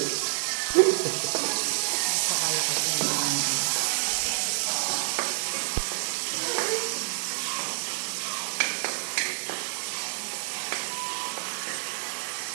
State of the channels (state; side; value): silent; left; 59 dB below the other